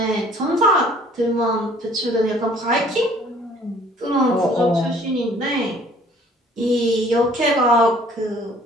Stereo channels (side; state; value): both; normal; correlation 0.56